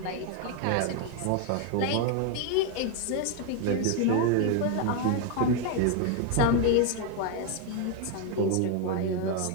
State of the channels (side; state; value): both; different; correlation 0.01